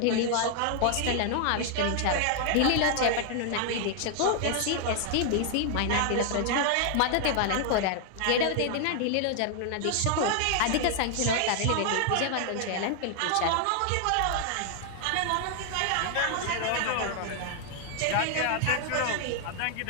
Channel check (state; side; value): different; both; correlation 0.00